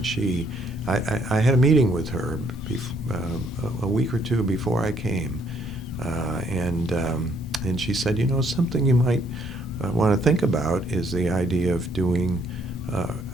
I had a meeting with her a week or two before I came, and she said, something you might want to think about is the idea of doing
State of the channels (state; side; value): normal; both; correlation 0.67